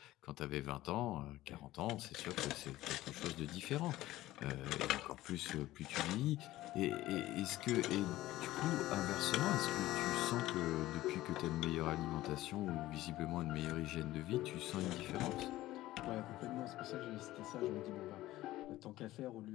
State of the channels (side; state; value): right; quieter; 16.2 dB